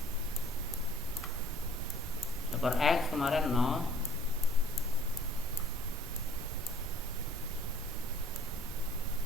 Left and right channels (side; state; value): both; normal; correlation 0.56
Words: per x kemarin 0,